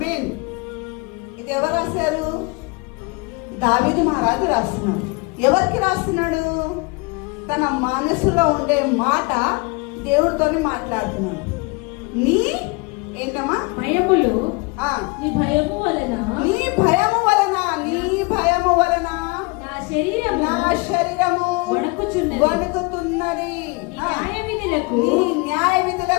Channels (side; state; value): right; quieter; 27.7 dB